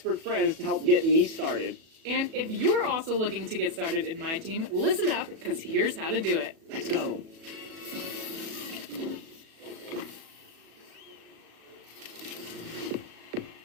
friends to help get me started. And if you're also looking to get started in my team, listen up, because here's how to do it. Let's go.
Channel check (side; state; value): left; late; 37 ms